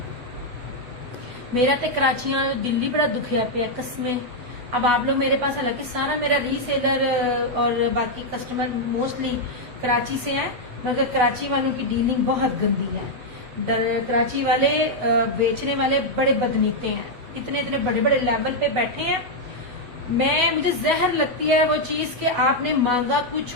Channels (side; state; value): left; late; 8.2 ms